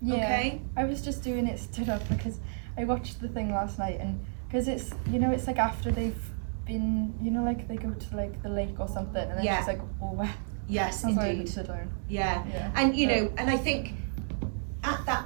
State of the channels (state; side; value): silent; left; digital silence